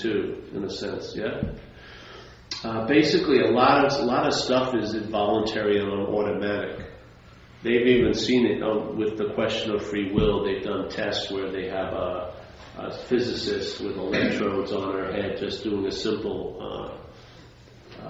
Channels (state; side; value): identical; both; correlation 1.00